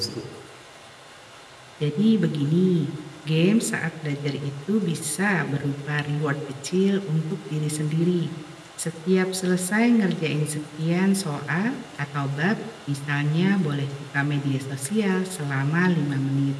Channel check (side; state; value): both; identical; correlation 1.00